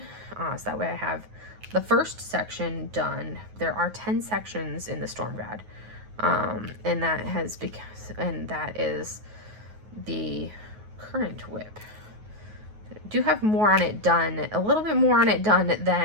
So that way I have the first section done. There are 10 sections in the Storm God. And that is the current WIP. do have more on it done, a little bit more on it done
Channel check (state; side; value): late; left; 9.4 ms